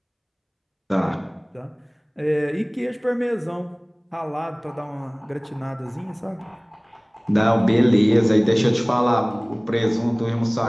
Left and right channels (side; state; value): both; identical; correlation 1.00